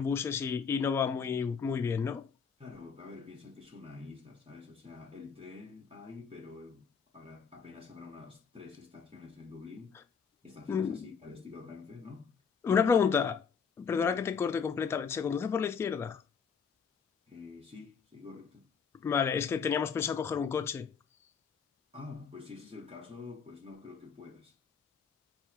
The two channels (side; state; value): right; quieter; 6.2 dB